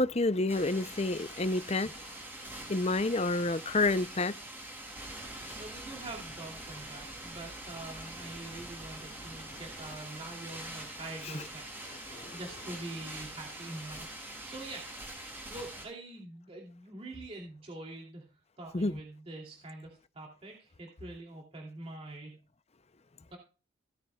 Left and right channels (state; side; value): normal; both; correlation 0.39